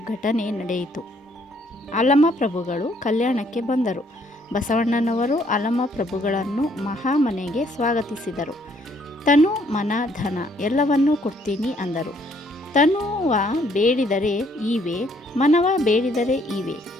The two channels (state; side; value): normal; both; correlation 0.66